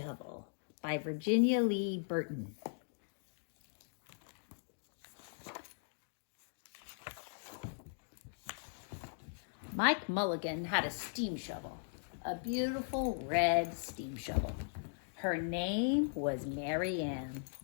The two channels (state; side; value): silent; right; digital silence